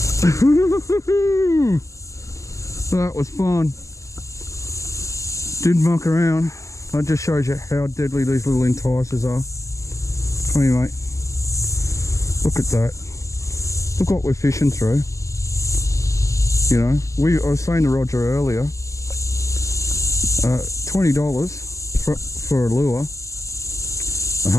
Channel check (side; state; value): right; late; 0.15 ms